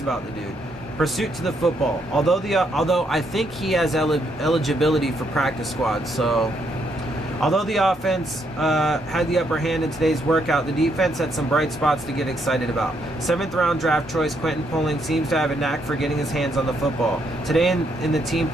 about the dude. Pursuit to the football. Although I think he has eligibility for practice squad. So, although the offense had the upper hand in today's workout, the defense had some bright spots to get excited about. 7th round draft choice Quentin Poling seems to have a knack for getting his hands on the football. Today in the team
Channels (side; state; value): both; normal; correlation 0.75